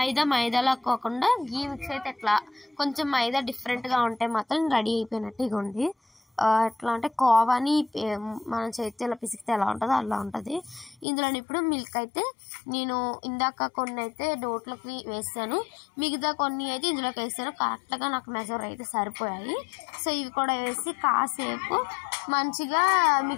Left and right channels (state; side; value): drops out; right; at 11.1 s